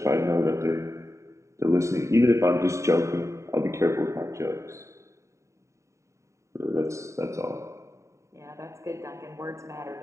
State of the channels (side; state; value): left; late; 0.14 ms